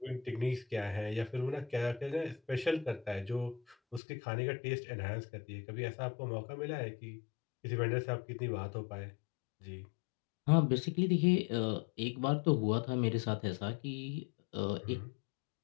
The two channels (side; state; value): right; drops out; at 4.0 s